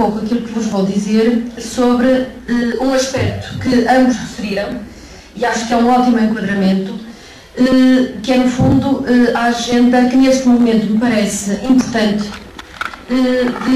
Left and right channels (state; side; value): identical; both; correlation 1.00